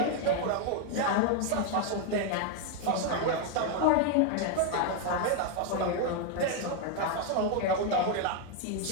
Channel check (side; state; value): both; different; correlation 0.01